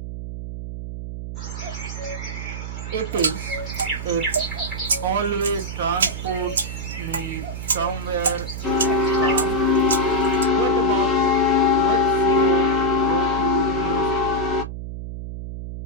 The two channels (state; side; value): noise; right; hum, 7 dB below the sound